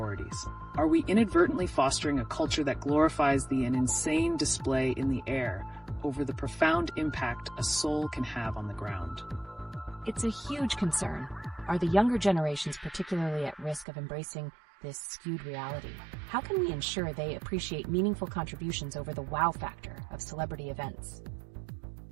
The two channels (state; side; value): drops out; left; at 13.9 s